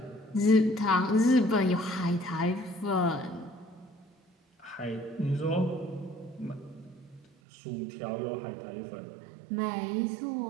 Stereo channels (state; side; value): drops out; left; at 7.2 s